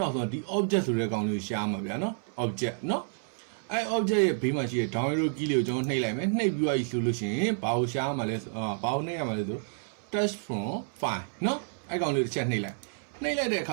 ောက်ဆုံးဒီ object ဆိုတဲ့ကောင်လေးကိုရှာမှာဗျာနော် object နော်အဲ့ object ရဲ့ဘေးမှာရှိတဲ့ download key လေးကိုကျွန်တော်နှိပ်လိုက်မယ်နှိပ်ပြီးသွားပြီဆိုလို့ရှိရင်ဘာကိုရှာမှာလဲဘာကိုနှိပ်ရမှာလဲဆို touch from file နော်အဲ့ကောင်လေးတစ်ချက်နှိပ်လိုက်တဲ့အခ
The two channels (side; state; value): left; silent; 58 dB below the other